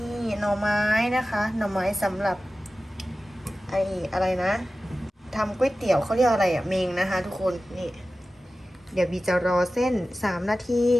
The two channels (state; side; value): normal; both; correlation 0.95